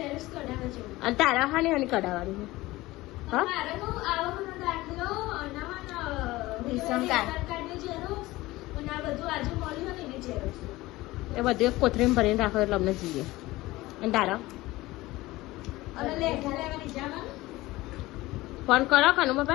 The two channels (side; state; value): right; quieter; 18.9 dB